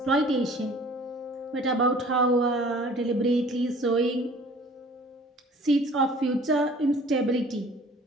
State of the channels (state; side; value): normal; both; correlation 0.50